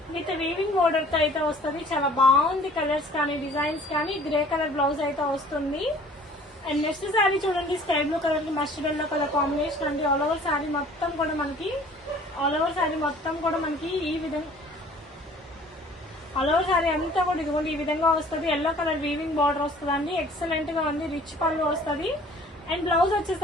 విత్ వీవింగ్ బోర్డర్ తో అయితే వస్తుంది. చాలా బాగుంది కలర్స్ కానీ, డిజైన్స్ కానీ. గ్రే కలర్ బ్లౌజ్ అయితే వస్తుంది. అండ్ నెక్స్ట్ సారీ చూడండి, స్కై బ్లూ కలర్ కి మస్టర్డ్ ఎల్లో కలర్ కాంబినేషన్ అండి. ఆల్ ఓవర్ సారీ మొత్తం కూడా మనకి ఈ విధంగా, ఆల్ ఓవర్ సారీ అంతా కూడా ఇదిగోండి ఈ విధంగా వస్తుంది. ఎల్లో కలర్ వీవింగ్ బార్డర్ వస్తుందండి. ఎక్సలెంట్ గా ఉంది. రిచ్ పళ్ళు వస్తుంది. అండ్ బ్లౌజ్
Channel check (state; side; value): normal; both; correlation 0.51